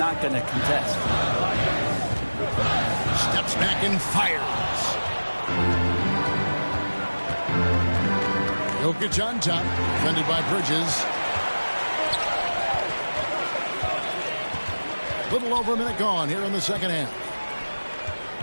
going to contest. Steps back and fires. Jokic on top, defended by Bridges. Little over a minute gone here in the second half.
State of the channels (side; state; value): both; inverted; correlation -1.00